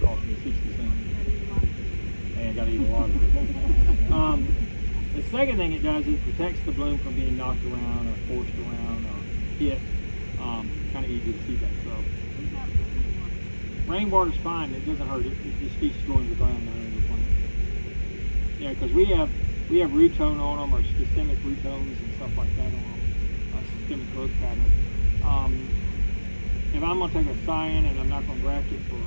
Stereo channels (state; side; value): inverted; both; correlation -1.00